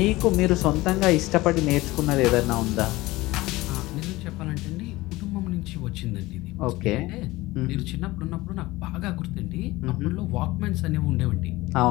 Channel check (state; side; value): quieter; right; 19.5 dB